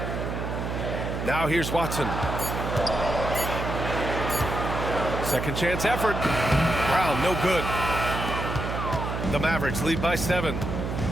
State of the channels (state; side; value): noise; right; hum, 4 dB below the sound